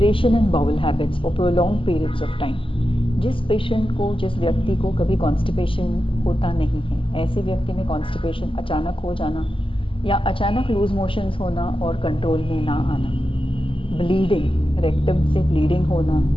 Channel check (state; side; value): late; right; 0.25 ms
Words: in bowel habits for prolonged periods of time. जिस पेशेंट को, जिस व्यक्ति को कभी कॉन्स्टिपेशन होता नहीं है, ऐसे व्यक्ति में कॉन्स्टिपेशन अचानक हो जाना या अचानक लूज मोशंस होना और कंट्रोल में ना आना, ब्लीडिंग, रेक्टम से ब्लीडिंग होना